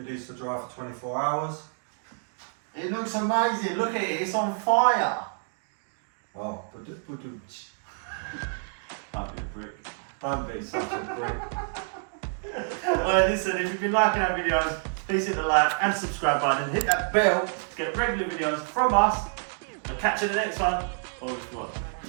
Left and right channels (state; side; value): silent; left; 59 dB below the other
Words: needs to dry for 24 hours. It looks amazing, look at it, it's on fire. Oh, Don't be a brick. don't be such a brick. Well, listen, if you've been liking our videos, please hit the like and subscribe button and hit that bell to get regular videos from us. I'll catch you in the next one. Or what?